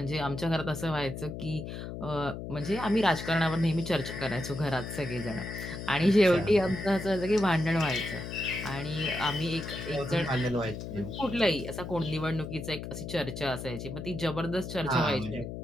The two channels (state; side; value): noise; left; hum, 8 dB below the sound